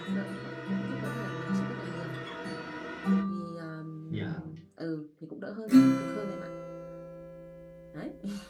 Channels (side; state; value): both; identical; correlation 1.00